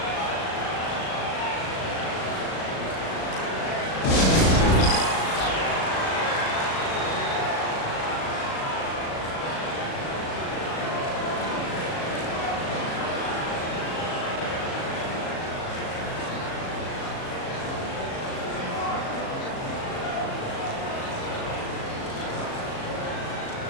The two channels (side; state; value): right; late; 37 ms